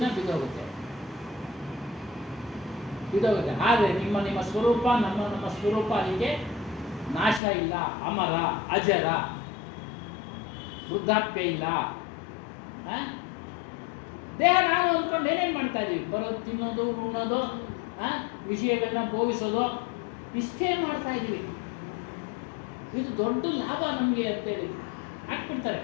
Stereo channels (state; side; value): drops out; right; at 7.4 s